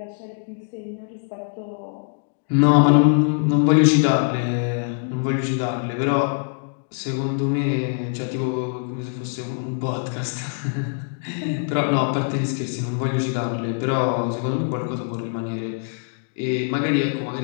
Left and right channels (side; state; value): right; silent; digital silence